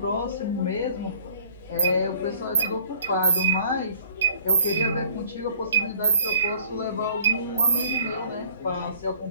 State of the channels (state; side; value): inverted; both; correlation -0.54